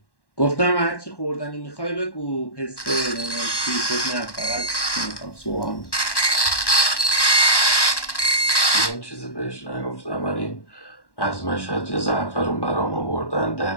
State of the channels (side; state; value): right; late; 1.1 ms